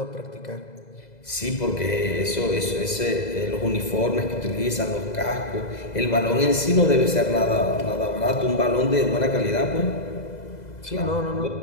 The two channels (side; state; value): right; late; 2.0 ms